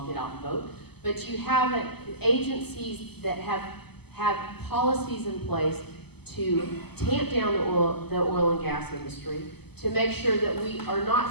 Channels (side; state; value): right; late; 0.97 ms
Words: get out and vote. But you have agencies that have policies in place to tamp down the oil and gas industry, to make sure that we are